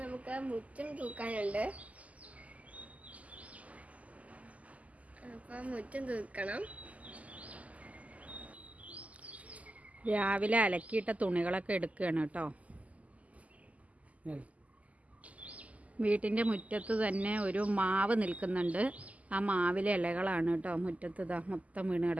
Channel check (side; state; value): left; late; 0.072 ms